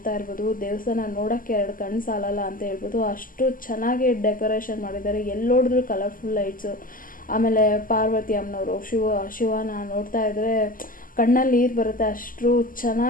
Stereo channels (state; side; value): late; right; 0.41 ms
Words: ಇರ್ಬೋದು, ದೇವಸ್ಥಾನ ನೋಡೋಕ್ಕೆ 2 ಕಣ್ಣು ಸಾಲಲ್ಲ ಅಂತ ಹೇಳ್ಬೋದು. ಅಷ್ಟು ಚೆನ್ನಾಗಿ ಡೆಕೋರೇಷನ್ ಮಾಡಿದ್ದಾರೆ. ಎಲ್ಲಿ ನೋಡಿದ್ರು ಕಲರ್ಫುಲ್ ಲೈಟ್ಸು. ಆಮೇಲೆ ಪಾರ್ವತಿ ಅಮ್ಮನವರು ಶಿವನ ನೋಡ್ತಾ ಇದ್ರೆ ಕಣ್ಣಲ್ಲಿ ನೀರು ಬರುತ್ತೆ. ಅಷ್ಟು